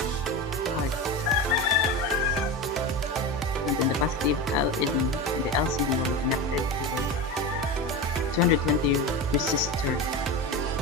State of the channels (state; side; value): normal; both; correlation 0.24